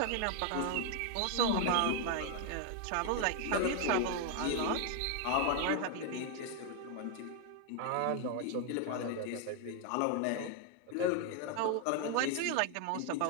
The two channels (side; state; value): both; different; correlation 0.00